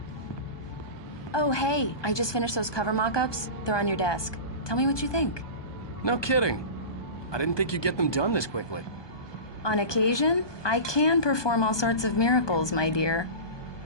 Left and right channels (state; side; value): late; right; 1.2 ms